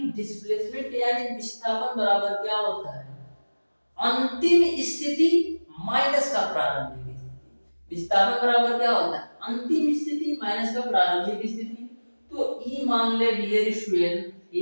डिस्प्लेसमेंट यानी विस्थापन बराबर क्या होता है अंतिम स्थिति माइनस का प्रारंभिक स्थिति। विस्थापन बराबर क्या होता है अंतिम स्थिति माइनस का प्रारंभिक स्थिति। तो ई मान ले डियर स्टूडेंट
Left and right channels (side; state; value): both; inverted; correlation -1.00